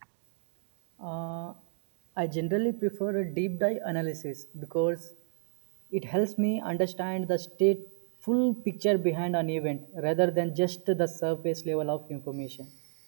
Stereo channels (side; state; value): left; silent; 57 dB below the other